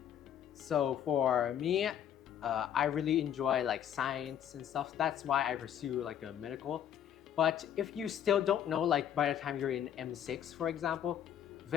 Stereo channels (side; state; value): right; quieter; 9.7 dB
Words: for me, I really enjoy like science and stuff. That's why I pursue like a medical. But if you still don't know, like by the time you're in M6, for example,